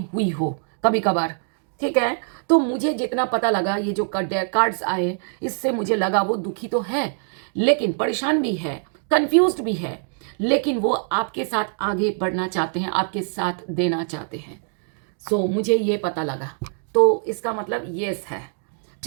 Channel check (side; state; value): left; silent; 58 dB below the other